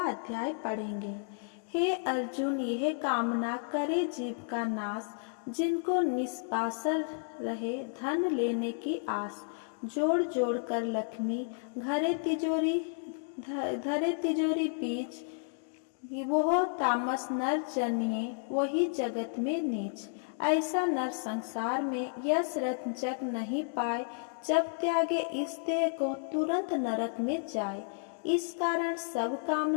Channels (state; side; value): silent; right; digital silence